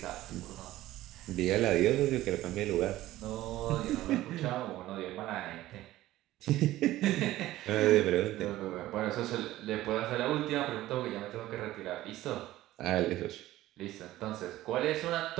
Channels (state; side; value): quieter; left; 15.6 dB